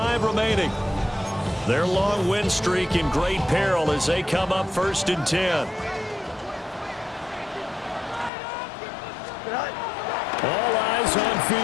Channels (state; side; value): drops out; right; at 8.3 s